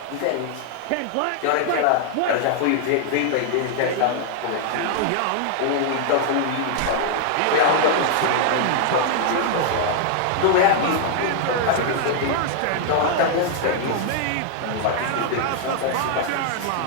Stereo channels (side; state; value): both; different; correlation 0.00